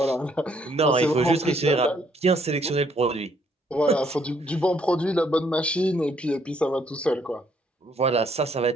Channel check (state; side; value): normal; both; correlation 0.68